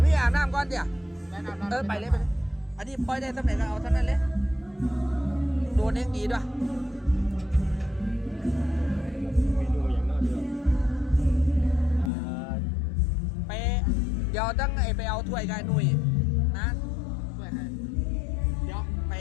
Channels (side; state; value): right; drops out; at 12.1 s